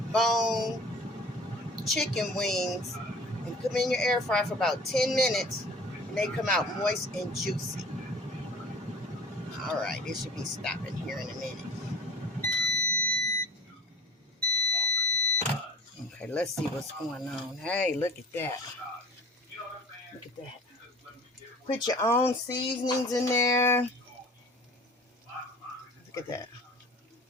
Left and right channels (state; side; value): normal; both; correlation 0.45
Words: bone chicken wings and put them in your air fryer for about 10 minutes, and they come out moist and juicy. All right, it should be stopping here in a minute. Okay, let's see what's going on. Hey, look at that. Look at that. Put your own seasonings in there. Look at that.